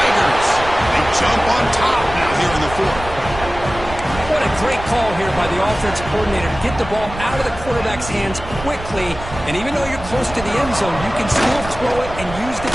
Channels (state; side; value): noise; right; rumble, 11 dB below the sound